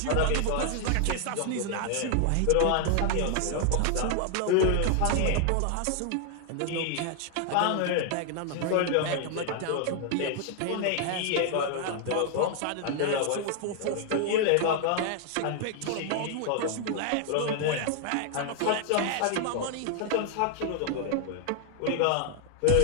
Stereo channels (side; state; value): both; different; correlation 0.00